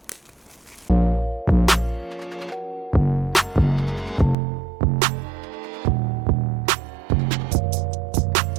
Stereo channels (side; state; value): left; drops out; at 4.4 s